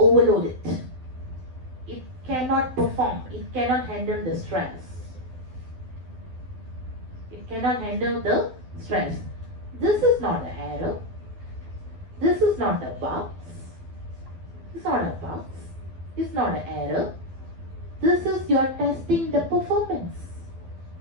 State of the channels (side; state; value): left; late; 12 ms